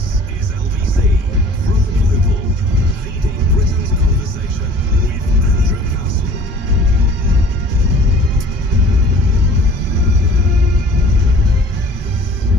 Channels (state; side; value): normal; both; correlation 0.48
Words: is LBC from Global, leading Britain's conversation with Andrew Castle.